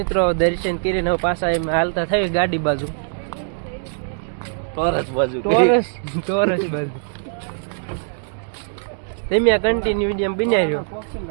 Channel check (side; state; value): left; silent; digital silence